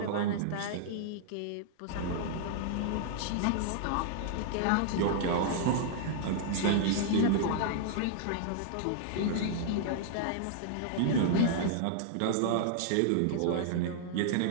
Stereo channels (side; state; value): both; different; correlation -0.01